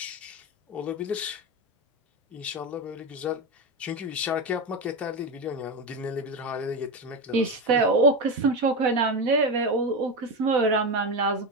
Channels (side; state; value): both; normal; correlation 0.16